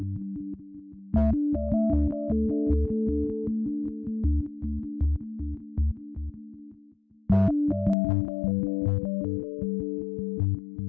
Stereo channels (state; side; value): drops out; right; at 8.0 s